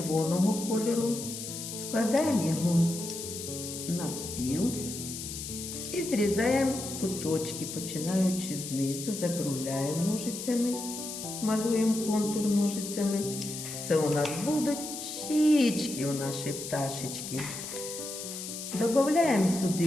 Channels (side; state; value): left; noise; hiss, 8 dB below the sound